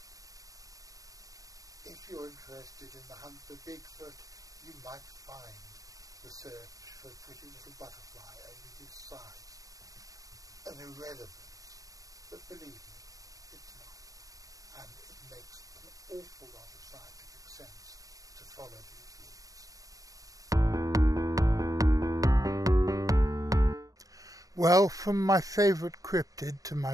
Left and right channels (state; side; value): late; left; 0.17 ms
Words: If you're interested in the hunt for Bigfoot, you might find the search for a pretty little butterfly only this size an irrelevance, but believe me, it's not. And it makes an awful lot of scientific sense to follow these leads. Well, from my favourite cryptid to